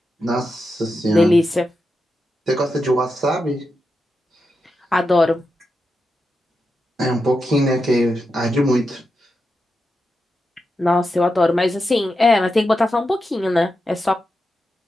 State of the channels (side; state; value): both; normal; correlation 0.88